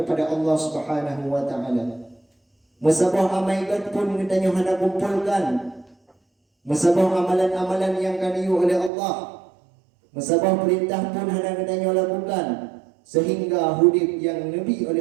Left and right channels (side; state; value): left; drops out; at 8.9 s